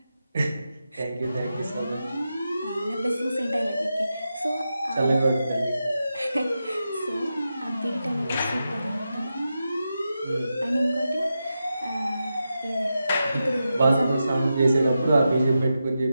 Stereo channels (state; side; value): inverted; both; correlation -0.89